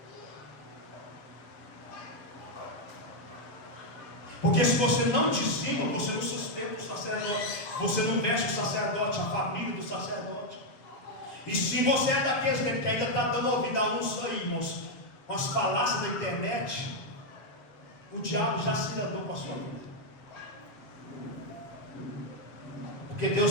Porque se você não dizima, você não sustenta o sacerdote, você não veste o sacerdote, a família do sacerdote. E se você é daqueles que ainda está dando ouvido a uns aí, irmãos, com as falácias da internet, o diabo já se andou com a sua vida. Porque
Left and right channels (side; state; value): right; late; 7.3 ms